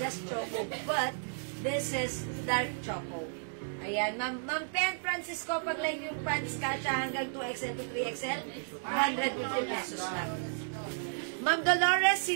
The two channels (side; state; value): left; silent; digital silence